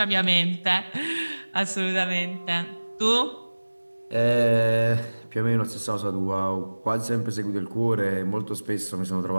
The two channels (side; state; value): both; inverted; correlation -1.00